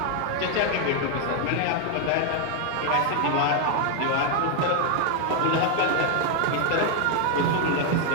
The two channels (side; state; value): both; different; correlation 0.00